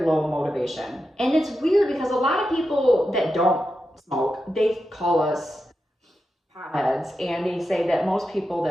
low motivation. And it's weird because a lot of people that don't smoke, they call us potheads, and they say that most people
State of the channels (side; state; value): both; normal; correlation 0.89